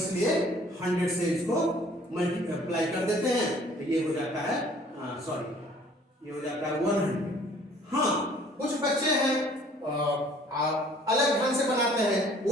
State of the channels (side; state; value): both; normal; correlation 0.55